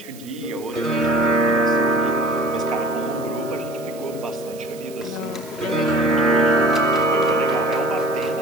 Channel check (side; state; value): right; noise; hiss, 20 dB below the sound